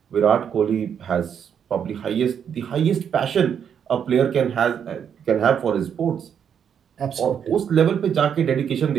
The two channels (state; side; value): quieter; left; 8.0 dB